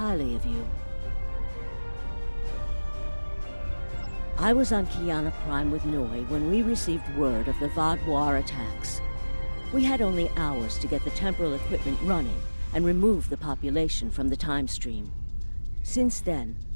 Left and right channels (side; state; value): both; inverted; correlation -1.00